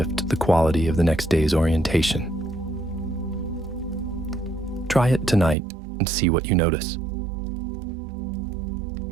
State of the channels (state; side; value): drops out; left; at 5.6 s